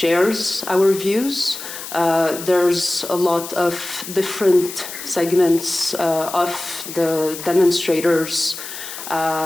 our views. There's a lot of different segments of the demonstrators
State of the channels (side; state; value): left; noise; hiss, 10 dB below the sound